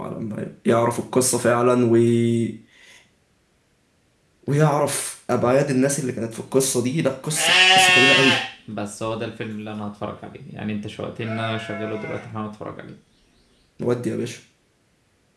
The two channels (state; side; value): identical; both; correlation 1.00